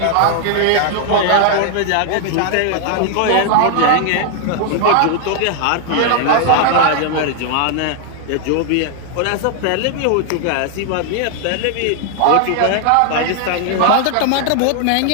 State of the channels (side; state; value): both; different; correlation 0.00